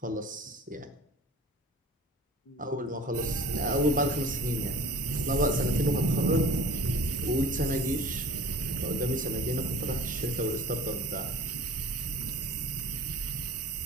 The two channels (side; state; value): both; normal; correlation 0.43